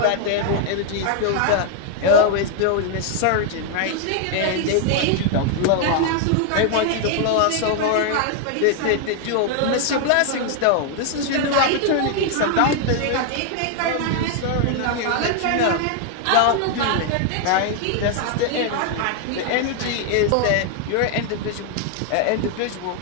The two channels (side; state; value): both; different; correlation 0.00